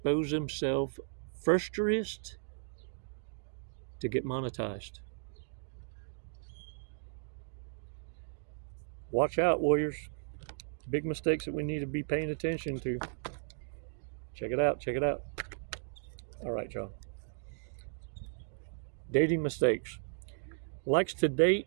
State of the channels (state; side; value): silent; left; digital silence